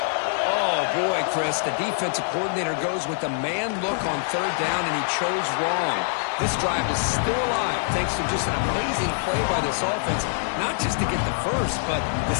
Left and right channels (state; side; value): silent; right; 58 dB below the other